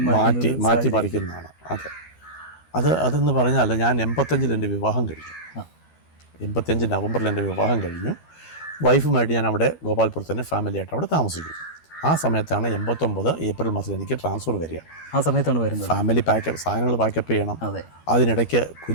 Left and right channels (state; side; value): late; right; 12 ms